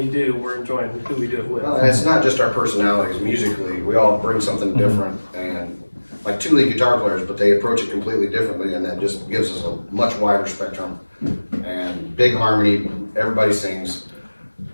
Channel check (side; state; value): both; inverted; correlation -1.00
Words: do, we're enjoying who we do it with. Well, and it's not just our personalities. Musically, we all bring something different, and like 2 lead guitar players, but they approach it completely differently, and that just gives us a much wider spectrum. And big harmony, everybody sings.